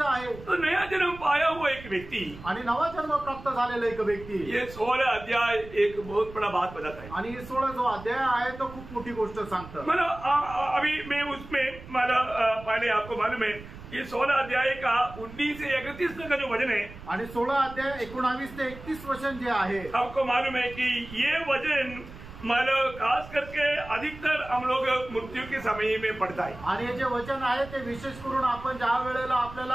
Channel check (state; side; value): noise; right; rumble, 16 dB below the sound